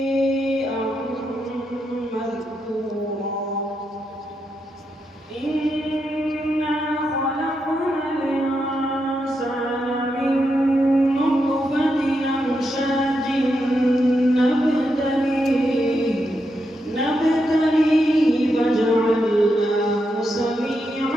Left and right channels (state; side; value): normal; both; correlation 0.83